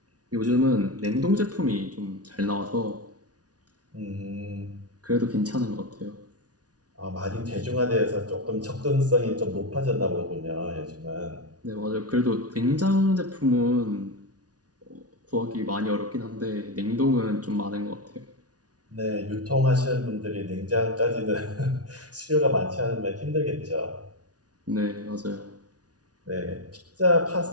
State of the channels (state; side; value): late; left; 0.68 ms